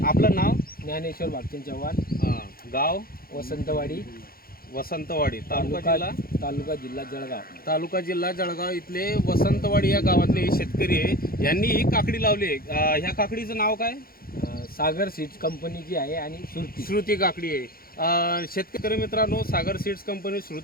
आपलं नाव? ज्ञानेश्वर भागचंद चव्हाण। गाव? वसंतवाडी। तालुका जिल्हा जळगाव इथले वसंतवाडी या गावातले शेतकरी आहे। यांनी ही काकडी लावली आहे। ह्या काकडीचं नाव काय? सागर सीड्स कंपनीची आहे आणि श्रुती काकडी आहे। शेतकरी मित्रांनो, सागर सीड्स कंपनी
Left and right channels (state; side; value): late; right; 0.43 ms